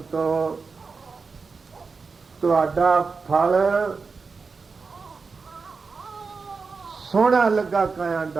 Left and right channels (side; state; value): left; quieter; 4.7 dB